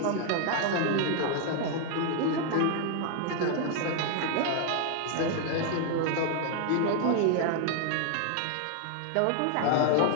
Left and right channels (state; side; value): different; both; correlation 0.00